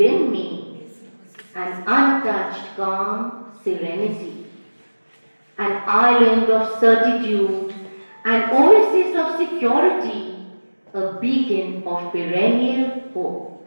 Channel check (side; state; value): both; inverted; correlation -1.00